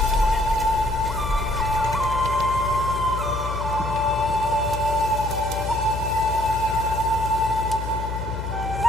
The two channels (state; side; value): noise; left; hum, 5 dB below the sound